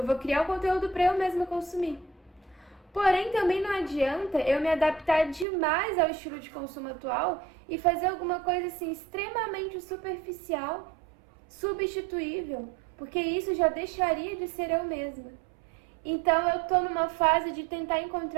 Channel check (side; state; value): left; drops out; at 5.5 s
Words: vou criar o conteúdo pra eu mesma consumir. Porém, também não adianta eu me adaptar demais ao estilo de consumo atual e fazer alguma coisa assim extremamente superficial, substituível, porque isso já deixaria de ser eu mesma. Então eu tô numa fase de tentar